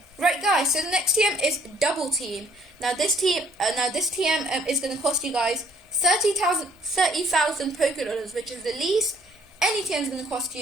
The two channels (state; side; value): normal; both; correlation 0.61